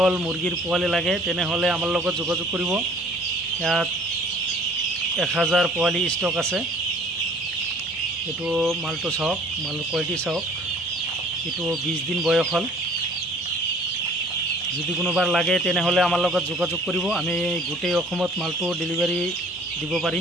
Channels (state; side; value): normal; both; correlation 0.53